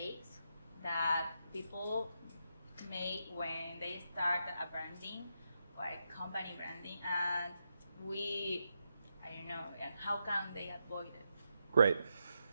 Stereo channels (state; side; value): inverted; both; correlation -0.84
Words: that people make when they start a branding or a company branding, and and how can they avoid it? Great.